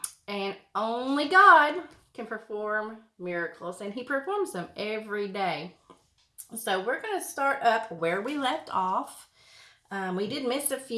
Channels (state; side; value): identical; both; correlation 1.00